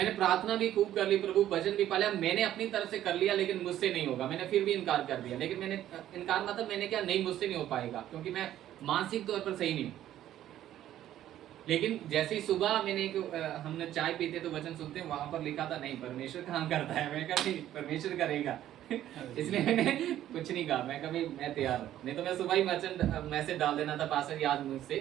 प्रार्थना भी खूब कर ली, प्रभु वचन भी पाला, मैंने अपनी तरफ से कर लिया, लेकिन मुझसे नहीं होगा, मैंने फिर भी इनकार कर दिया। लेकिन मैंने इनकार मतलब मैंने क्या, नहीं मुझसे नहीं हो पाएगा, क्योंकि मैं मानसिक तौर पर सही नहीं हूं। लेकिन जैसे ही सुबह मैंने हमने चाय पीते तो वचन सुनते हैं, वहां पर लिखा था नहीं परमेश्वर काम करता है। मैं कहा नहीं, परमेश्वर करेगा। इसलिए मैंने कुछ नहीं कहा, मैं कभी मैं तैयार हूँ, नहीं तो मैं सुबह ही वचन मैसेज डाल देना था, पास्टर जी आज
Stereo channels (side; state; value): left; quieter; 12.3 dB